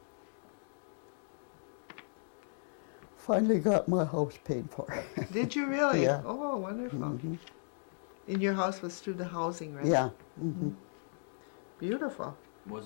Finally got my house paid for. Did you really? Yeah. Oh, wonderful. And your house was through the housing, right? Yeah. Hmm Beautiful.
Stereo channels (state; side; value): silent; right; digital silence